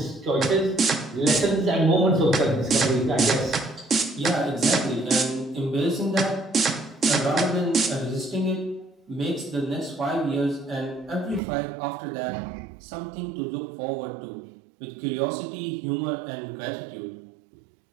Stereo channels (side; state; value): left; drops out; at 11.4 s